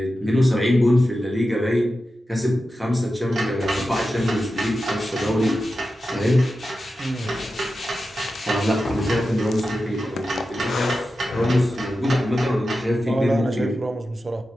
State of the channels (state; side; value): normal; both; correlation 0.92